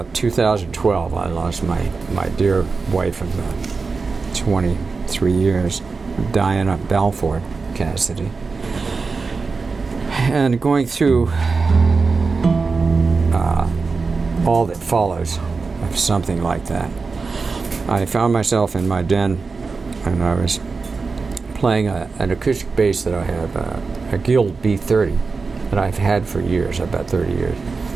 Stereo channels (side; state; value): left; quieter; 4.4 dB